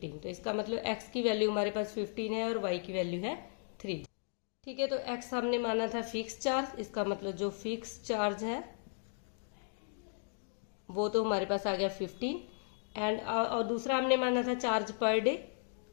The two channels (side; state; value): right; silent; digital silence